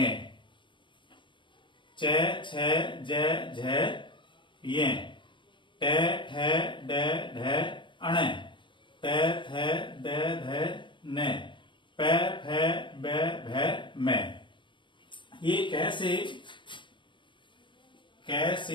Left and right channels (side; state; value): right; late; 0.23 ms